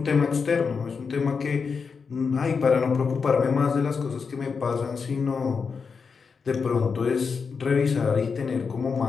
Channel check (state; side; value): quieter; right; 5.4 dB